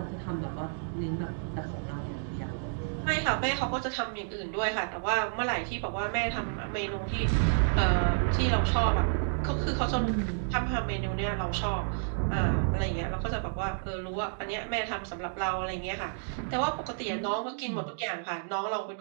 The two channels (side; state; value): left; silent; digital silence